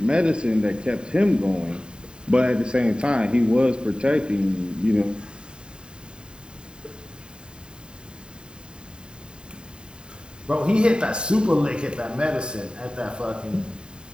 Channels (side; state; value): left; late; 0.049 ms